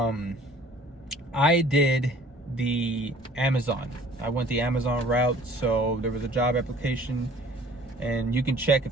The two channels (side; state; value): both; normal; correlation 0.51